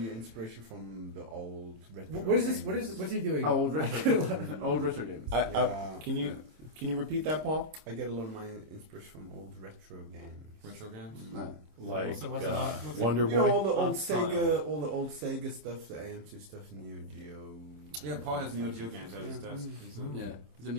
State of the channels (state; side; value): late; left; 26 ms